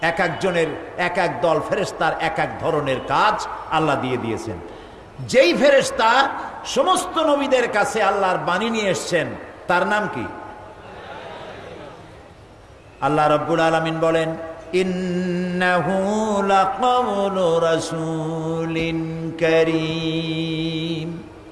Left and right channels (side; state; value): both; identical; correlation 1.00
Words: এক একজনের এক এক দল ফেরেশতার এক এক ধরনের কাজ আল্লাহ দিয়ে দিয়েছেন। যেই ফেরেশতা সমস্ত নবীদের কাছে আল্লাহর বাণী নিয়ে এসছেন তার নাম কি? আল্লাহ রাব্বুল আলামিন বলেন, ইন্নাহু লাকাউলু রাসূলিন কারীম।